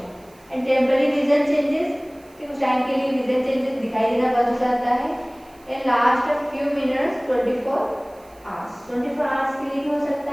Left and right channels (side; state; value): right; noise; hiss, 29 dB below the sound